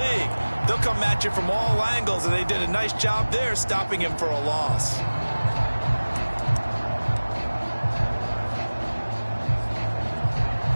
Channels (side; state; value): both; inverted; correlation -1.00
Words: They'll come at you from all angles, and they did a nice job there stopping him for a loss.